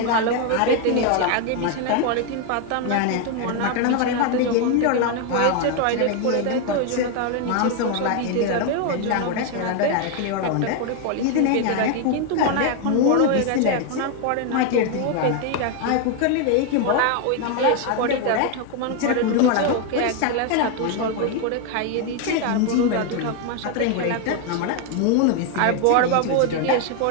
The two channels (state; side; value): different; both; correlation 0.01